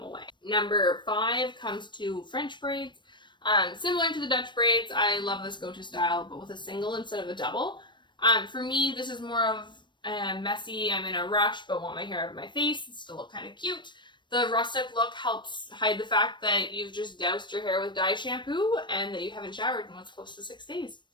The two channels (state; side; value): late; right; 0.22 ms